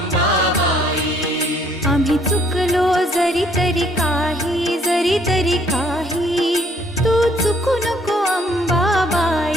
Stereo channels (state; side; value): normal; both; correlation 0.63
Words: आम्ही चुकलो जरी तरी काही तू चुकू नको